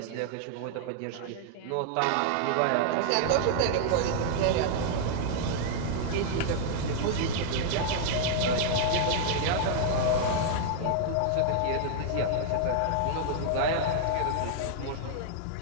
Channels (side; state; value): both; different; correlation -0.01